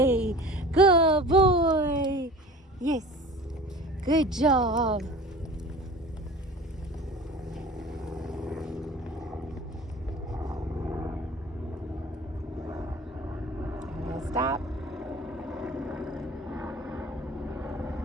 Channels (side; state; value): both; normal; correlation 0.40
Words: yes, good job. Stop.